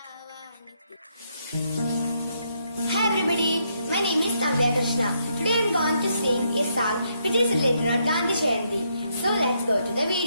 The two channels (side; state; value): both; inverted; correlation -0.76